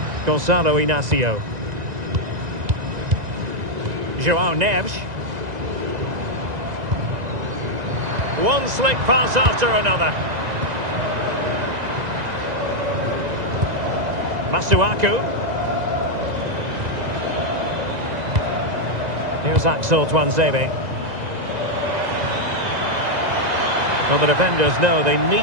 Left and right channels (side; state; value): left; late; 2.0 ms